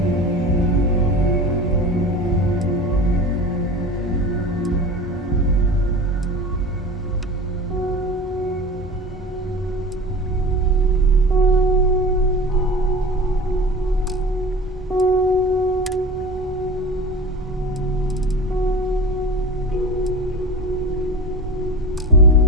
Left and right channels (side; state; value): both; normal; correlation 0.33